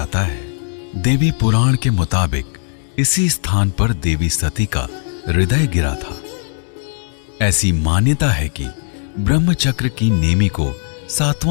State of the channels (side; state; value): right; silent; digital silence